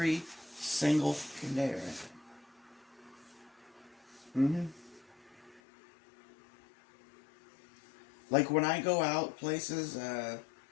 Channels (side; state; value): right; drops out; at 5.6 s